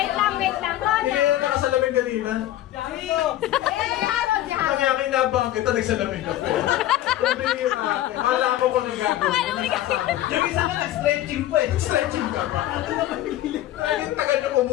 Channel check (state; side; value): quieter; right; 13.8 dB